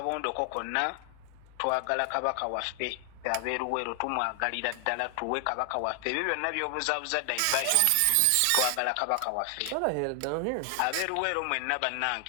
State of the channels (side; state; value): both; different; correlation 0.00